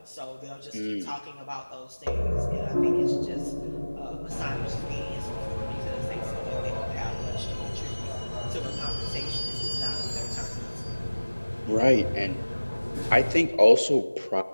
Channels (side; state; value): both; inverted; correlation -1.00